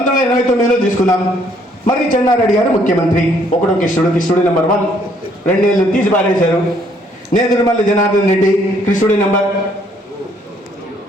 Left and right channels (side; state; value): both; normal; correlation 0.66